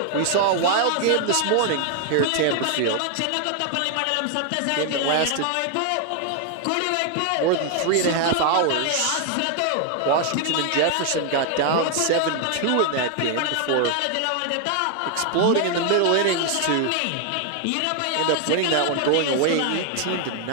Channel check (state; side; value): different; both; correlation 0.00